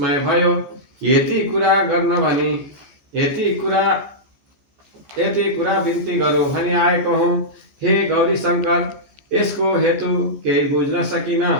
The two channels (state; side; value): late; left; 14 ms